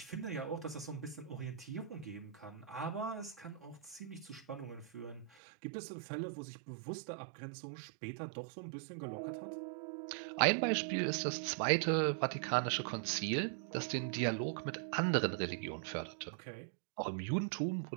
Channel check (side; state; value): left; drops out; at 5.3 s